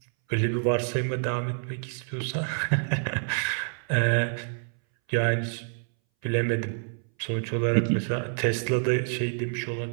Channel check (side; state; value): left; silent; 60 dB below the other